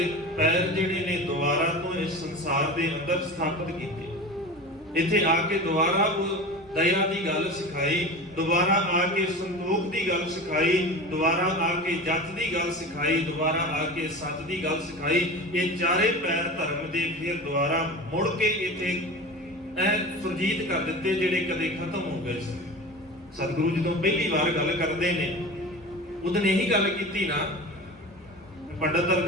ਪੈਰ ਜਿਹੜੇ ਨੇ ਦੁਬਾਰਾ ਤੋਂ ਇਸ ਸੰਸਾਰ ਦੇ ਅੰਦਰ ਸਥਾਪਿਤ ਕੀਤੇ। ਇੱਥੇ ਆ ਕੇ ਦੁਬਾਰਾ ਉਹ ਦਇਆ ਦੀ ਗੱਲ ਸਿਖਾਈ, ਦੁਬਾਰਾ ਆ ਕੇ ਸੰਤੋਖ ਦੀ ਗੱਲ ਸਿਖਾਈ, ਦੁਬਾਰਾ ਆ ਕੇ ਜੱਤ ਦੀ ਗੱਲ ਸਿਖਾਈ, ਦੁਬਾਰਾ ਆ ਕੇ ਸੱਚ ਦੀ ਗੱਲ ਸਿਖਾਈ। ਇਹ ਚਾਰੇ ਪੈਰ ਧਰਮ ਦੇ ਫਿਰ ਦੁਬਾਰਾ ਮੁੜ ਕੇ ਇੱਥੇ ਸੁਰਜੀਤ ਕਰ ਦਿੱਤੇ ਜਿਹੜੇ ਕਦੇ ਖਤਮ ਹੋ ਗਏ ਸੀ। ਸਤਿਗੁਰੂ ਜਦੋਂ ਪਹਿਲੀ ਵਾਰ ਗੱਲ ਕਰਦੇ ਨੇ ਉਦੋਂ ਇਹੀ ਗੱਲ ਕੀਤੀ ਨਾ, ਪੰਡਤ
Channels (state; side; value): normal; both; correlation 0.32